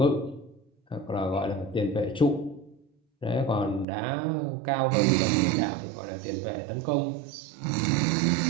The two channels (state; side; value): drops out; left; at 3.9 s